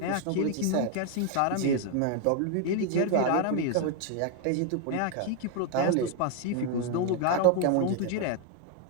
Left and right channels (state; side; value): different; both; correlation 0.00